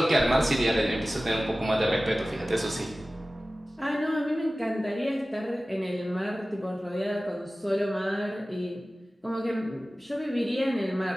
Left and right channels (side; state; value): both; normal; correlation 0.96